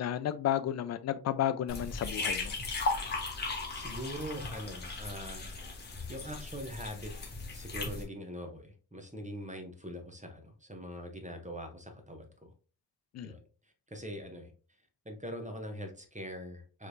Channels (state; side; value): quieter; right; 4.9 dB